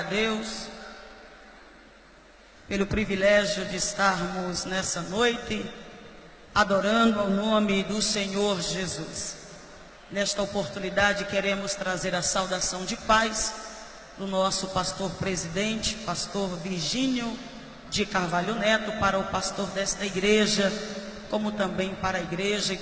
Deus pelo privilégio de estarmos nessa noite adorando ao nome do Senhor Jesus. Nesta oportunidade queremos trazer a saudação de paz do nosso pastor presidente, pastor Virgínio de Carvalho Neto, para o pastor desta igreja, como também para a igreja e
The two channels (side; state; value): both; identical; correlation 1.00